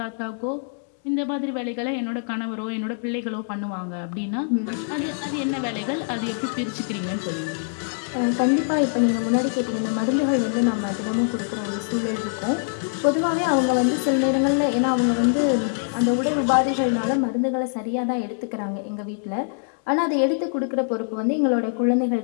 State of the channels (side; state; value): right; silent; digital silence